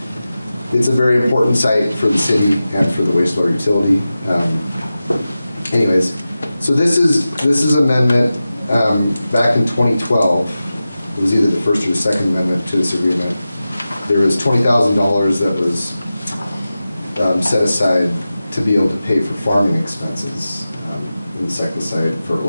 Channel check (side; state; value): both; inverted; correlation -0.94